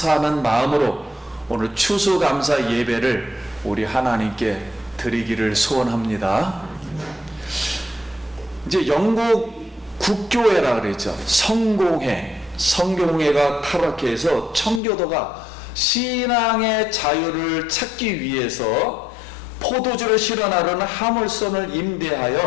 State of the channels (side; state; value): right; drops out; at 14.8 s